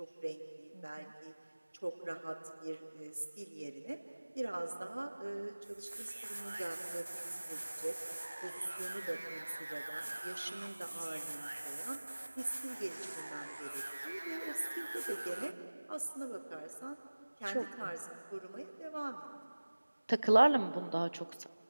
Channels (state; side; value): inverted; both; correlation -1.00